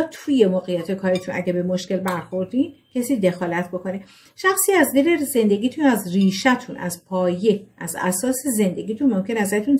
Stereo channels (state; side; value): identical; both; correlation 1.00